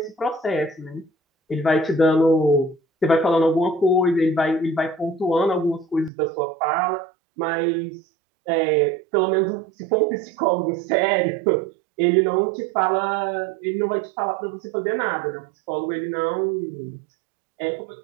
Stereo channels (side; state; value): left; drops out; at 6.1 s